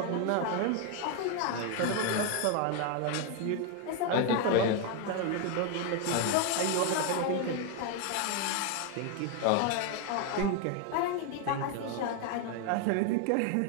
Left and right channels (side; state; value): both; different; correlation 0.01